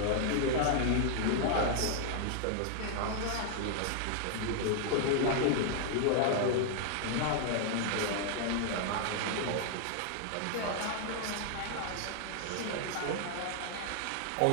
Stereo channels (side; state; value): both; different; correlation 0.00